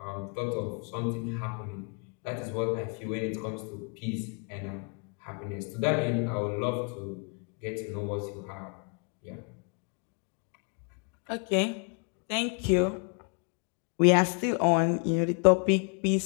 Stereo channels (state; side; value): quieter; right; 38.9 dB